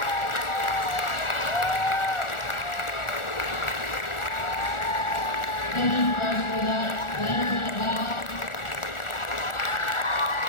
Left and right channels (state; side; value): late; right; 1.4 ms